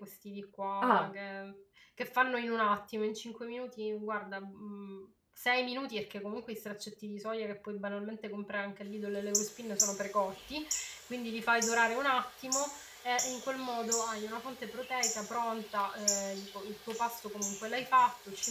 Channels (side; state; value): both; identical; correlation 1.00